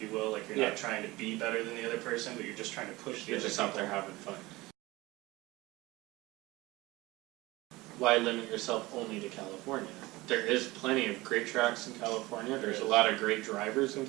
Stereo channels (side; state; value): left; quieter; 20.5 dB